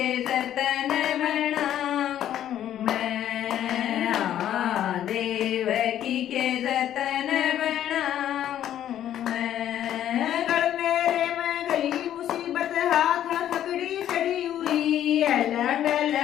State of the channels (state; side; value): quieter; right; 11.2 dB